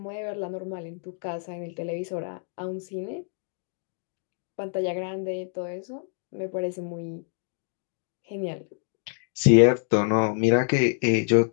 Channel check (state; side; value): silent; right; 56 dB below the other